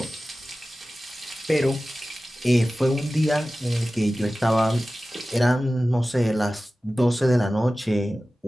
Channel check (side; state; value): both; normal; correlation 0.96